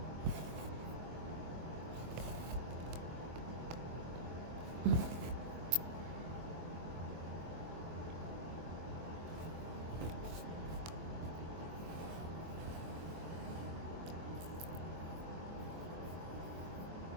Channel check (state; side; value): late; left; 24 ms